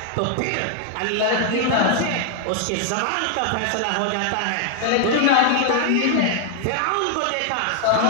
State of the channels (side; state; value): both; different; correlation 0.00